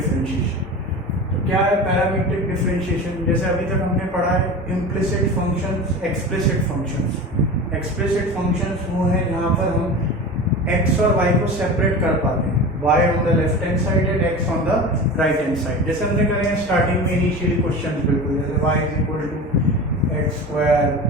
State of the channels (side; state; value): both; normal; correlation 0.32